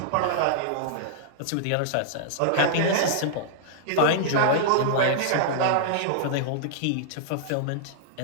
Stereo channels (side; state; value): both; different; correlation -0.01